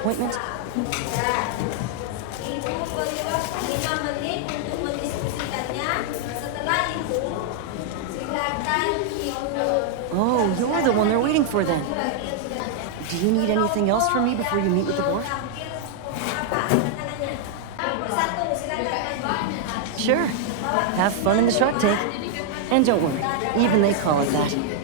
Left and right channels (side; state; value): both; different; correlation -0.01